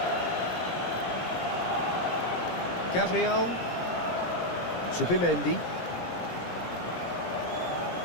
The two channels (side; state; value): right; late; 17 ms